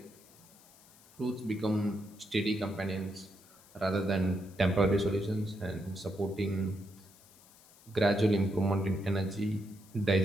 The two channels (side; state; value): left; noise; hiss, 25 dB below the sound